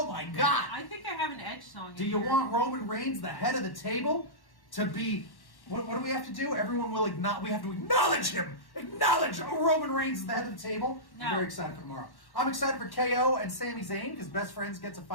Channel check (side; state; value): right; late; 1.1 ms